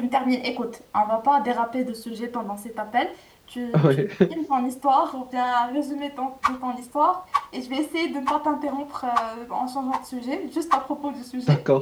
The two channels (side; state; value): both; identical; correlation 1.00